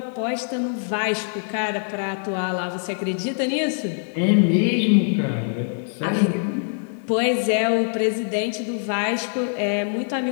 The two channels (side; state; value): right; silent; digital silence